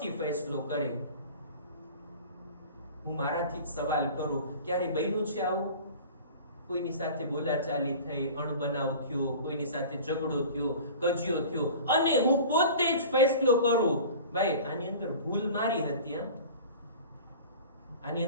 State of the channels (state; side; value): inverted; both; correlation -0.40